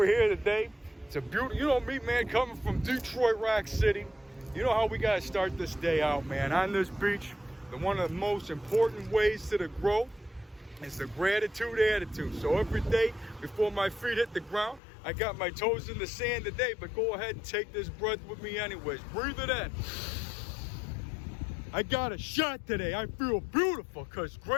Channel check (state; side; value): drops out; right; at 14.8 s